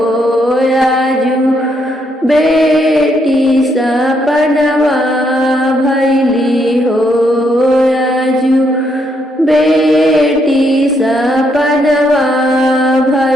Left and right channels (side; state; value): both; normal; correlation 0.75